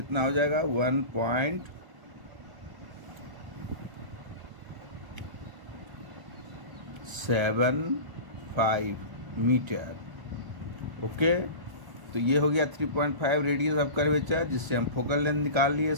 हो जाएगा? 1.75 मीटर। ओके, तो ये हो गया 3.5 रेडियस ऑफ कर्वेचर, जिससे हम फोकल लेंथ निकाल लिए।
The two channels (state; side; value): late; left; 1.1 ms